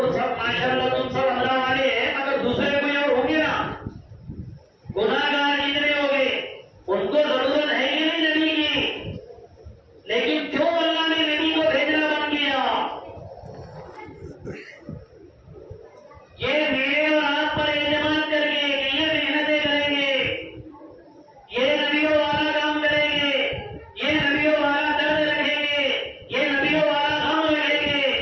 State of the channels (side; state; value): both; identical; correlation 1.00